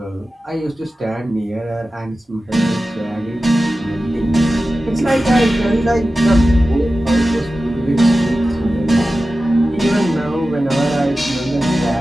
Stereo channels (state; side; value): normal; both; correlation 0.94